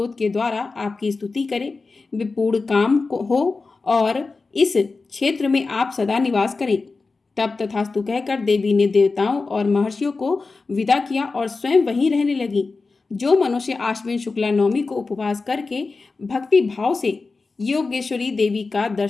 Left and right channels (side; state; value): right; quieter; 4.0 dB